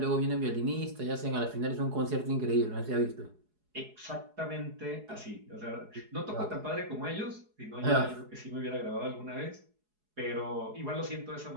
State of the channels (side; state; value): left; late; 4.8 ms